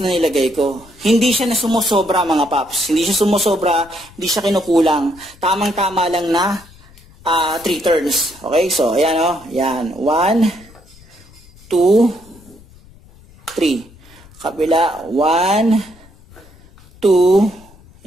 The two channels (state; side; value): noise; left; rumble, 25 dB below the sound